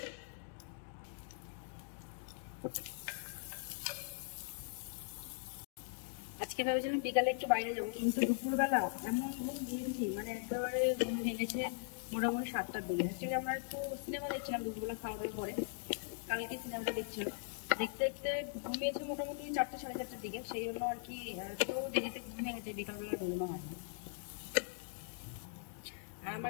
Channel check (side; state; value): right; silent; digital silence